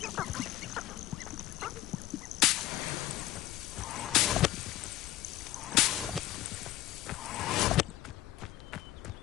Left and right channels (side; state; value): right; quieter; 15.0 dB